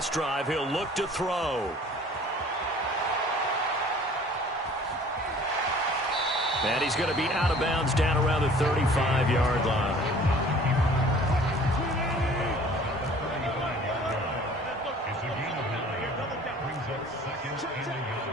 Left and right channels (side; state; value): both; normal; correlation 0.50